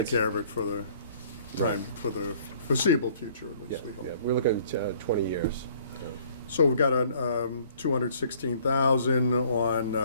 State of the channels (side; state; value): both; inverted; correlation -0.57